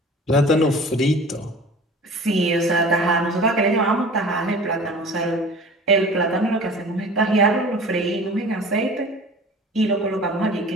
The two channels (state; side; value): normal; both; correlation 0.41